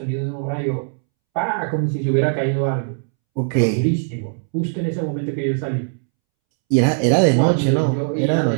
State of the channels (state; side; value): silent; left; 66 dB below the other